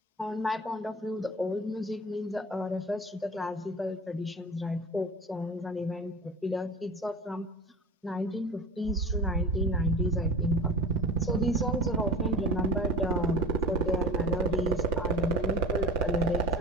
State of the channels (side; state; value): both; normal; correlation 0.35